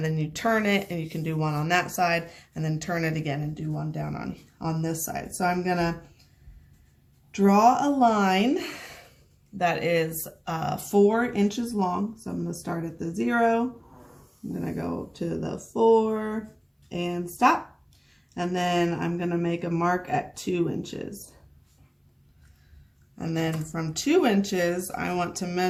then you turn it and you can do one on that side and then turn it again and do one down on this side. So I'm going to draw a line that is 4 inches long. So I'm going to start at the 0. I'm going to go to the 4 and stop. And then I'm going to make a mark at 2 inches. And then from 2 inches, I want to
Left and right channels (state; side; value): identical; both; correlation 1.00